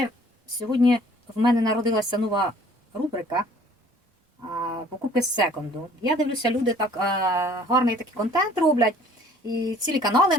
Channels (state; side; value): normal; both; correlation 0.54